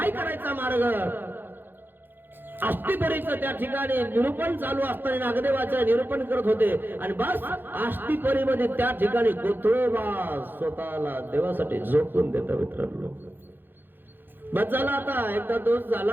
करायचा मार्ग? आस्तिपरीचं त्या ठिकाणी निरूपण चालू असताना नागदेवाचं निरूपण करत होते. आणि बस आस्तिपरीमध्ये त्या ठिकाणी कोथळवास स्वतःला देवासाठी झोकून देता मित्रांनो. बस झाला, आता एकदा दोष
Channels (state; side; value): late; left; 0.096 ms